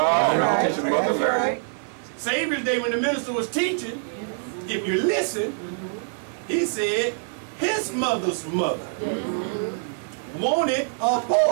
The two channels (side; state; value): left; silent; digital silence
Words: right. Savior's Day, when the minister was teaching, if you listen, he said his mother's mother wanted a